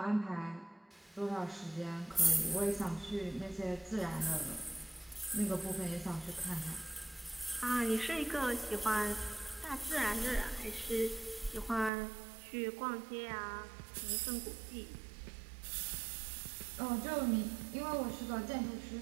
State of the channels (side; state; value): left; drops out; at 11.9 s